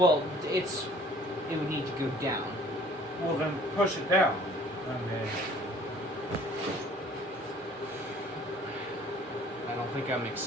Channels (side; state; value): both; normal; correlation 0.53